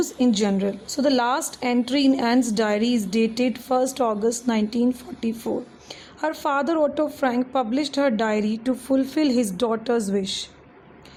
in general. So the last entry in Anne's diary is dated 1st August 1944. Her father Otto Frank published her diary to fulfill his daughter's wish.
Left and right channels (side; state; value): both; identical; correlation 1.00